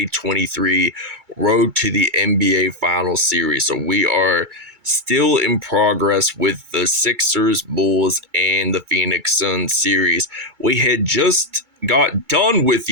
Road to the NBA Finals series. So we are still in progress with the Sixers, Bulls, and the Phoenix Suns series. We had just got done with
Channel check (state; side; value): late; left; 2.3 ms